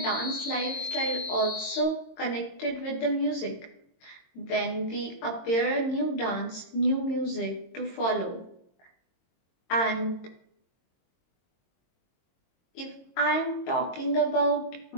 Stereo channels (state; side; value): late; right; 22 ms